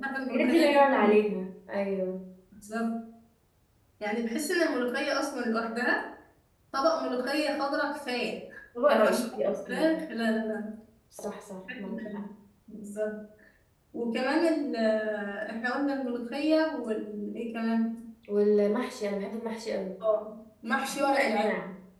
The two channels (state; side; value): identical; both; correlation 1.00